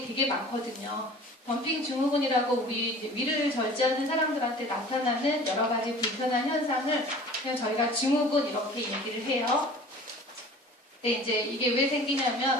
되게 많거든요. 덤핑 증후군이라고 우리 위를 절제하는 사람들한테 나타나는 여러 가지 불편한 현상을 그냥 저희가 증후군 이렇게 얘기를 해요. 근데 이제 이게 왜 생기냐면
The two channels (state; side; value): normal; both; correlation 0.44